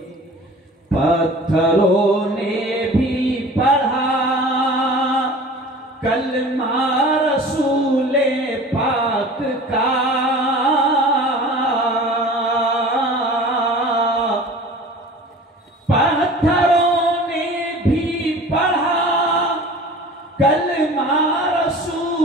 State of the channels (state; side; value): normal; both; correlation 0.42